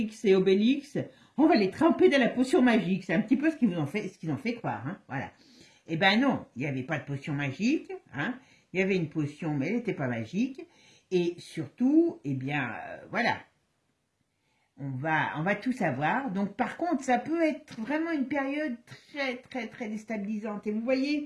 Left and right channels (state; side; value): identical; both; correlation 1.00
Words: et Obélix, on va les tremper dans la potion magique. C'est un petit peu ce qu'ils ont fait croire, hein, voilà. Eh ben non, il n'y avait pas de potion magique, hein. Il y avait une potion, mais elle n'était pas magique. Et surtout, eh bien, voilà, on va tout savoir. Donc, par contre, ça peut être vraiment une période très, très, très déstabilisante. Et vous